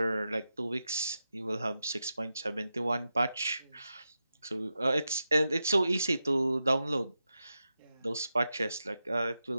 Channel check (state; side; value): inverted; both; correlation -0.90